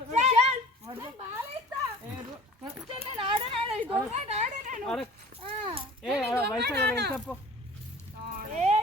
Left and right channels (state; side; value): normal; both; correlation 0.44